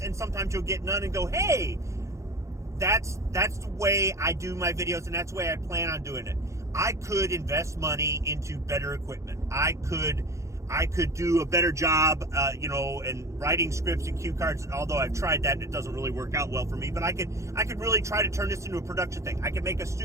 and sometimes you'll get none and go, hey, that's the way I do my videos, and that's the way I plan on doing it. I could invest money into better equipment. I could do a better job, in writing scripts and cue cards. Although I've tried that and it doesn't really work out well for me. But I could really try to turn this into a production thing. I could make a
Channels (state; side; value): late; left; 0.14 ms